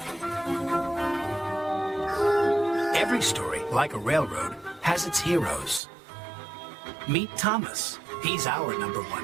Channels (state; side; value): drops out; left; at 5.8 s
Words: Every story, like a railroad, has its heroes. Meet Thomas. He's our